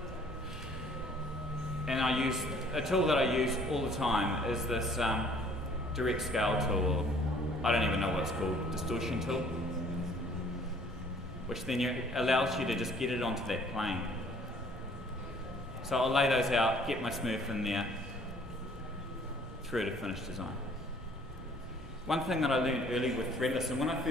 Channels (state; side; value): normal; both; correlation 0.57